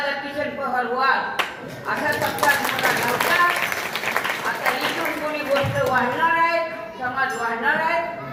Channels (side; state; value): both; identical; correlation 1.00